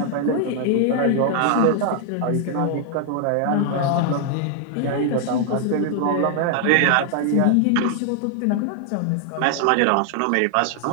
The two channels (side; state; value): both; different; correlation 0.00